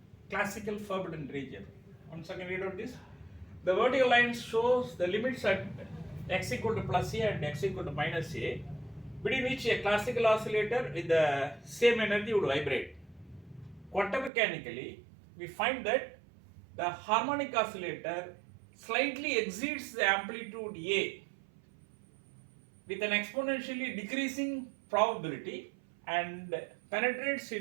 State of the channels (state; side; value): drops out; left; at 14.3 s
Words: classical forbidden region. Once again, read out this. The vertical line shows the limits at x equal to plus a and x equal to minus a, between which a classical oscillator with the same energy would vibrate. Quantum mechanically, we find that the harmonic oscillator slightly exceeds the amplitude A with an exponentially decreasing probability and penetrates